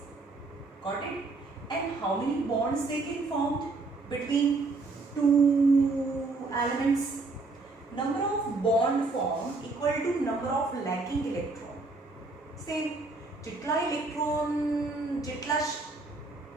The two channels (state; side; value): quieter; left; 3.6 dB